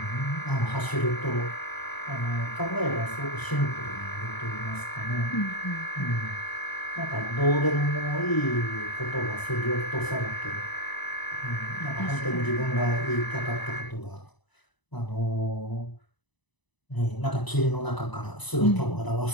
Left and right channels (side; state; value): right; late; 1.0 ms